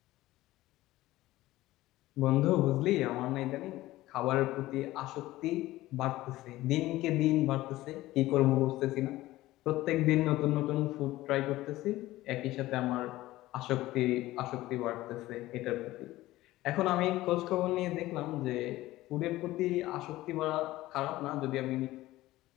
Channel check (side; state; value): right; quieter; 16.9 dB